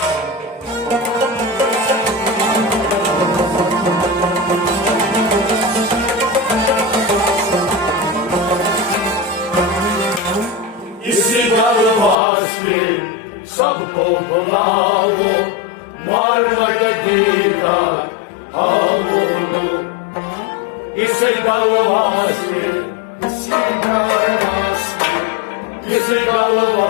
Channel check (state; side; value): drops out; right; at 12.2 s